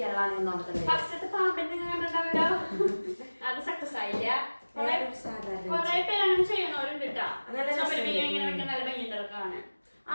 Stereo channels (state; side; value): inverted; both; correlation -1.00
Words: ഫസ്റ്റത്തെ പാമ്പിന്റെ കണ്ടിട്ടുണ്ടാവല്ലോ, അത് സക്സസ് ആയില്ല. കൊറേ പേര് അങ്ങനെ ചെയ്യണവരുണ്ട് കേട്ടാ. ചുമര് ഇങ്ങനെ വെക്കാൻ നല്ല ഭംഗിയുണ്ടാണ്.